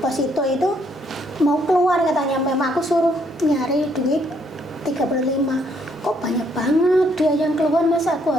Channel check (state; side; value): normal; both; correlation 0.69